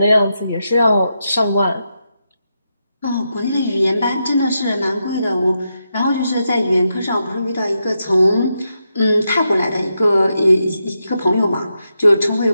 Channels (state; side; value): inverted; both; correlation -0.85